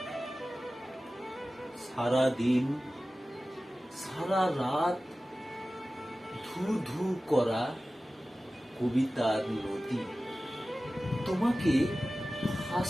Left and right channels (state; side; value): normal; both; correlation 0.96